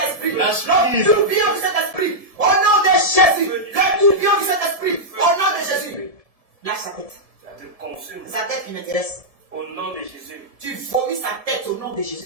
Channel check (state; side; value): late; left; 1.7 ms